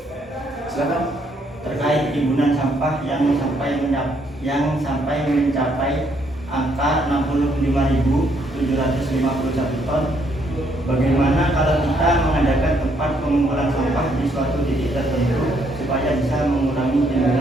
Silakan. Terkait timbunan sampah yang sampai mencapai angka 65.751 ton, bagaimana kalau kita mengadakan tempat pengumpulan sampah di suatu titik tertentu supaya bisa mengurangi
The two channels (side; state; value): both; normal; correlation 0.71